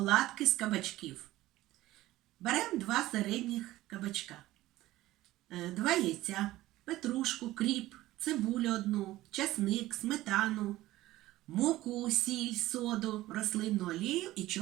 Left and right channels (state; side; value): quieter; left; 16.4 dB